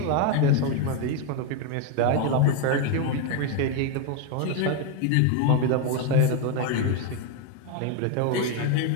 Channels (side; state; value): both; different; correlation 0.01